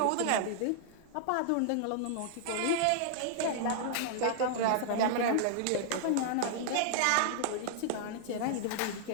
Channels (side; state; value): both; different; correlation -0.01